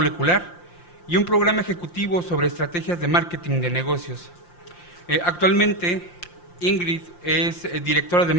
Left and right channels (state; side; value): late; right; 5.7 ms